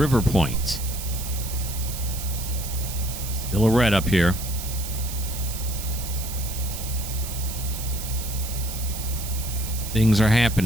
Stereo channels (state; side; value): noise; right; hiss, 8 dB below the sound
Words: Point. Still a red up here. Things are